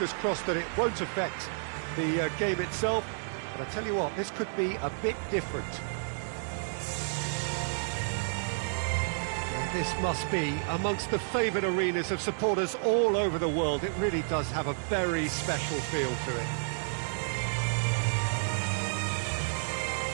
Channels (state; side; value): silent; left; digital silence